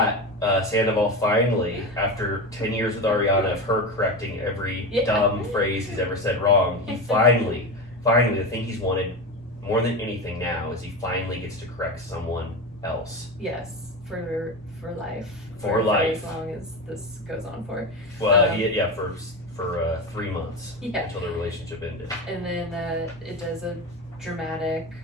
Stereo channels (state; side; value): normal; both; correlation 0.21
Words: Sandoval finally, after 10 years with Ariana of her correcting every dumb phrase he's ever said wrong, he finally, the thing he's wanted more than anything now is he finally gets to correct someone else. Yes, for life. For life. As long as this goes on for. Well, for 3 months Yeah. until the relationship ended. And then it does a dramatic